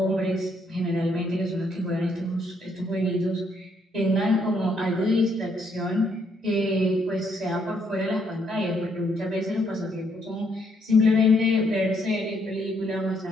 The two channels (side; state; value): both; normal; correlation 0.72